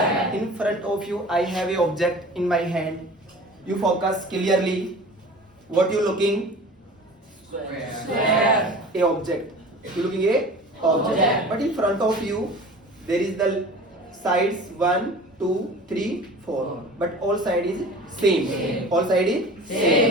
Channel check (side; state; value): both; normal; correlation 0.40